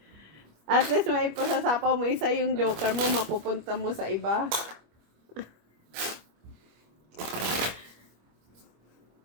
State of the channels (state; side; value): late; left; 25 ms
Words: At least may pasasapaw mo isa yung joker mo, mapupunta mo sa iba.